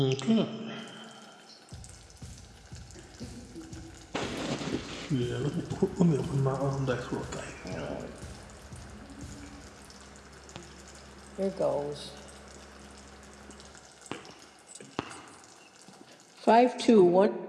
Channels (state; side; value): identical; both; correlation 1.00